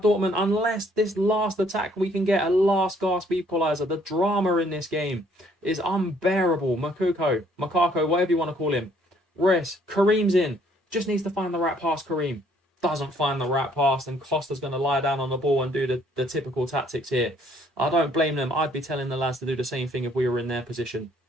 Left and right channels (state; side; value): normal; both; correlation 0.64